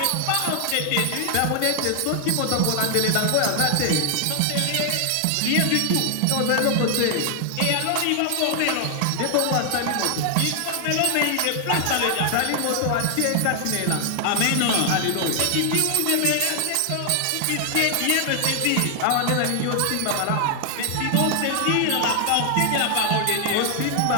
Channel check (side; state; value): both; different; correlation 0.00